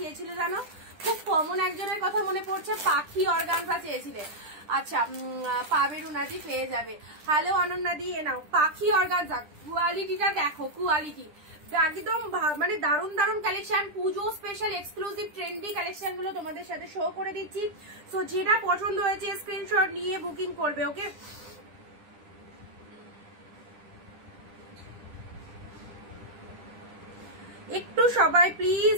জানো, খুব কমন একজনের কথা মনে পড়ছে, পাখি অর্গানজা চেয়েছিলে। আচ্ছা পাবে রুনাদি, পেয়ে যাবে। হ্যালো অনন্যাদি, এ নাও পাখি অর্গানজা, কোয়ালিটিটা দেখো, কোয়ালিটি একদম মানে দারুন দারুন কালেকশন, পুজো স্পেশাল এক্সক্লুসিভ ট্রেন্ডি কালেকশন গুলো তোমাদের সাথে শো করে দিচ্ছি। সো যেটা পছন্দ হয়েছে স্ক্রিনশট নিয়ে বুকিং করবে। ওকে, একটু সবাই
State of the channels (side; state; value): left; late; 10 ms